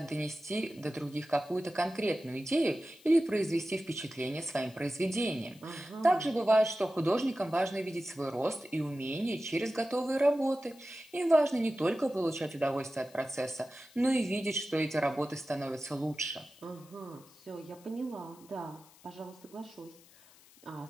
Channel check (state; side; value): noise; left; hiss, 25 dB below the sound